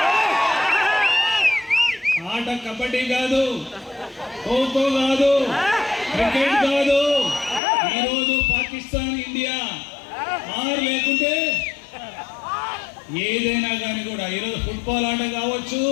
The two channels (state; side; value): drops out; right; at 7.6 s